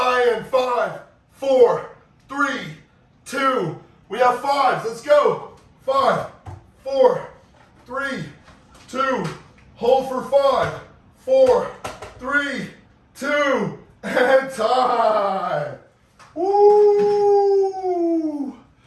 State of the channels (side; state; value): both; identical; correlation 1.00